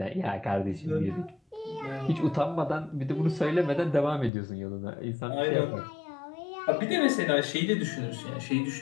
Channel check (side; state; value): right; drops out; at 4.3 s